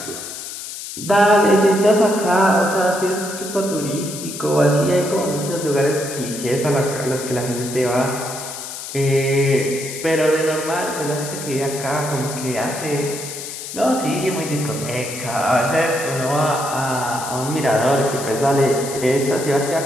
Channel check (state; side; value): noise; left; hiss, 9 dB below the sound